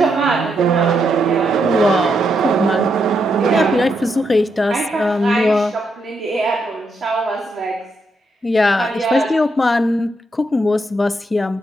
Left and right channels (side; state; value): both; normal; correlation 0.80